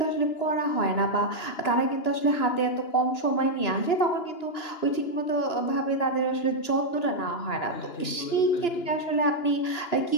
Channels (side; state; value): right; late; 2.9 ms